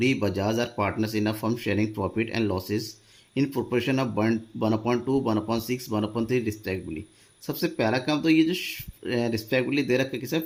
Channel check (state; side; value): identical; both; correlation 1.00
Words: Bajaj are partners in a firm sharing profit and losses in proportion of 1/2, 1/6, 1/3 respectively. सबसे पहला काम तो ये जो रिस्पेक्टिवली दे रखा है किसी